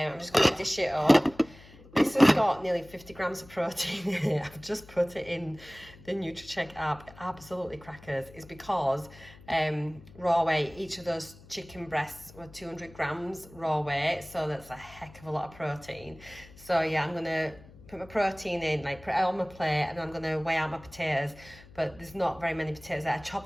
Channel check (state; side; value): noise; left; hum, 21 dB below the sound